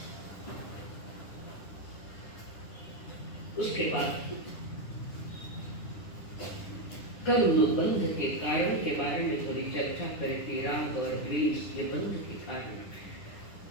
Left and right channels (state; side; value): late; right; 10 ms